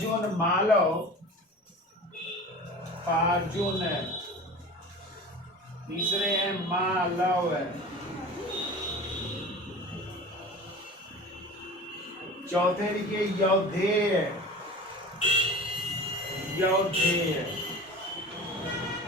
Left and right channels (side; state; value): both; normal; correlation 0.36